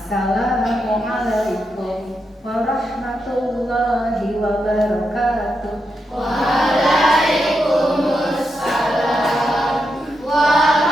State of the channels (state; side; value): normal; both; correlation 0.85